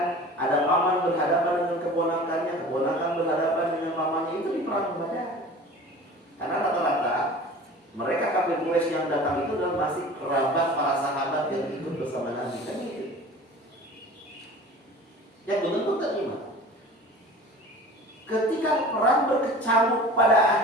ada paman berhadapan dengan keponakannya, keponakan berhadapan dengan pamannya, itu di perang Badar. Karena rata-rata mereka kafir Quraisy yang datang itu adalah masih kerabat para sahabat yang ikut bersama Nabi, kan gitu. Yang benar-benar terima. Ketika perang berkecamuk, pada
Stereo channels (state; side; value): normal; both; correlation 0.41